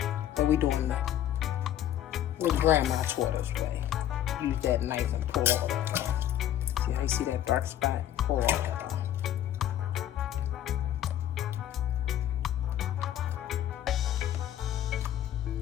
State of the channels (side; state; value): right; quieter; 11.6 dB